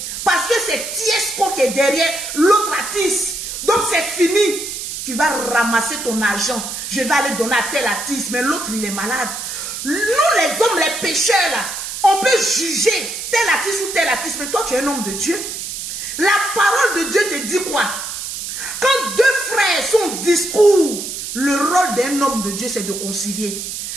Parce que c'est Tiesco qui est derrière l'autre artiste. Donc c'est fini. Tu vas ramasser ton argent. Je vais aller donner à tel artiste. Mais l'autre, il est malade. Nous, les hommes, les pécheurs, là, on peut juger tel artiste ou tel artiste. Mais toi, tu es un homme de Dieu. La parole de Dieu te dit quoi? Quand 2 frères sont au discours, le rôle d'un homme de Dieu, c'est de concilier.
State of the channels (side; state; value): right; noise; hiss, 6 dB below the sound